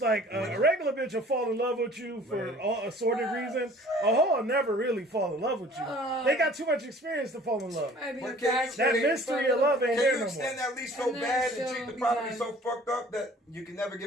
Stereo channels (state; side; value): normal; both; correlation 0.50